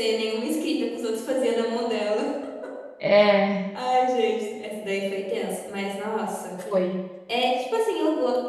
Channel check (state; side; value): identical; both; correlation 1.00